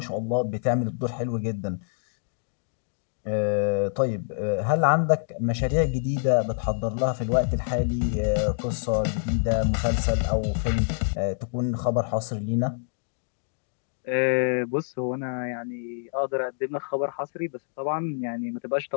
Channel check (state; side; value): silent; right; digital silence